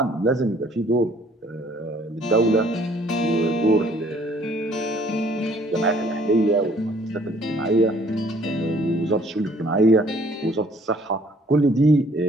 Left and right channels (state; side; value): normal; both; correlation 0.59